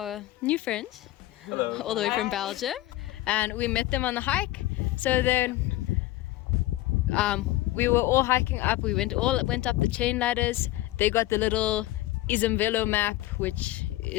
new friends. Hello. All the way from Belgium, and we met them on the hike. So then we were all hiking up. We went up the chain ladders. They got the little Isumvelo map, which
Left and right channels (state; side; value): quieter; right; 16.8 dB